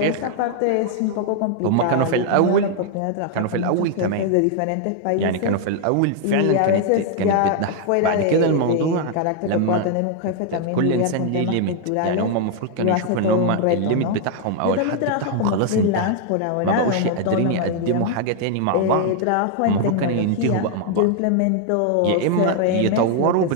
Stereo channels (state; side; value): different; both; correlation 0.00